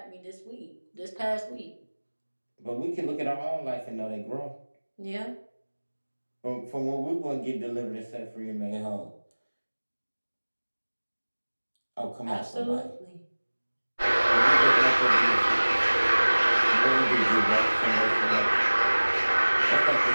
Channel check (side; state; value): both; inverted; correlation -1.00